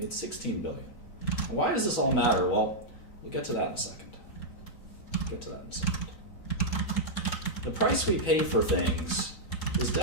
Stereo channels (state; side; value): late; right; 3.9 ms